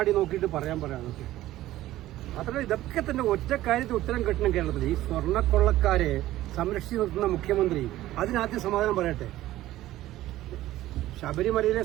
നോക്കിയിട്ട് പറയാനൊക്കെ മാത്രമല്ല ഇതൊക്കെ തന്നെ ഒറ്റ കാര്യത്തിൽ ഉത്തരം കിട്ടണം കേരളത്തിൽ. ഈ സ്വർണ്ണക്കൊള്ളക്കാരെ സംരക്ഷിച്ചു നിർത്തുന്ന മുഖ്യമന്ത്രി അതിനാദ്യം സമാധാനം പറയട്ടെ. ശബരിമലയിലെ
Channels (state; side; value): quieter; left; 15.1 dB